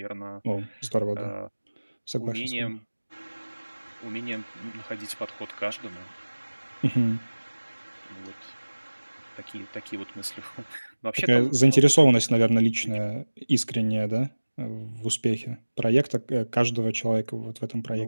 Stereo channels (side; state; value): both; inverted; correlation -1.00